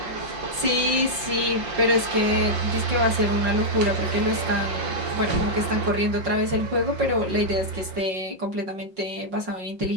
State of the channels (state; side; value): late; left; 5.5 ms